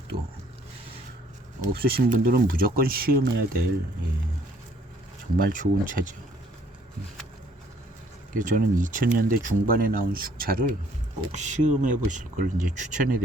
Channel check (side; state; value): both; normal; correlation 0.62